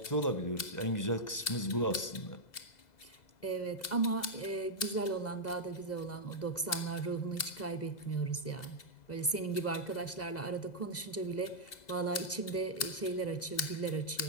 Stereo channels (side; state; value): right; late; 2.0 ms